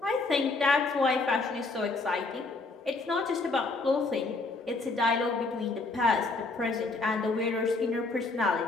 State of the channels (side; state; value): right; quieter; 3.6 dB